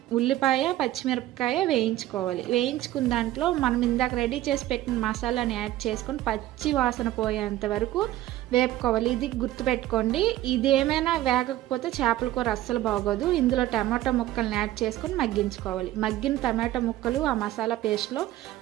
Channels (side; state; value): left; quieter; 14.8 dB